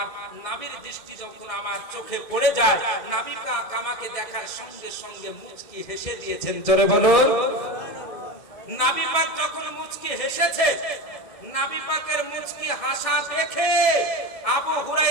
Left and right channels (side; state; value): right; late; 1.7 ms